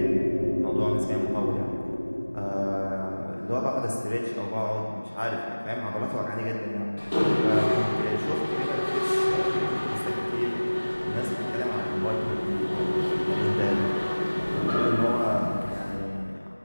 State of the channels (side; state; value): both; inverted; correlation -1.00